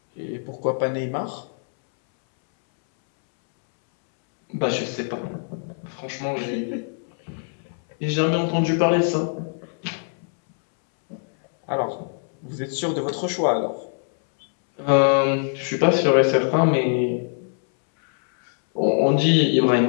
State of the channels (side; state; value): right; silent; 63 dB below the other